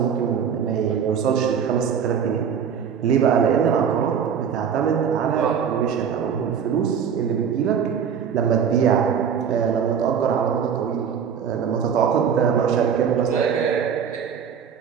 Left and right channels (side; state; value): left; quieter; 7.4 dB